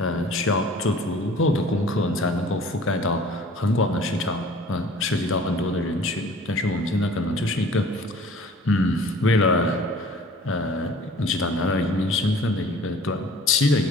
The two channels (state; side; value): normal; both; correlation 0.48